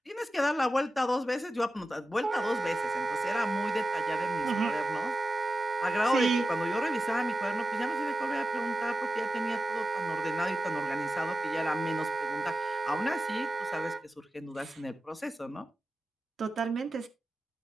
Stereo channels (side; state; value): both; normal; correlation 0.93